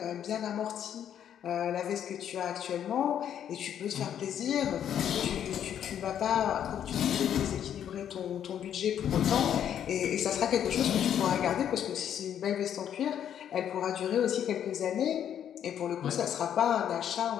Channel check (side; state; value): right; quieter; 9.6 dB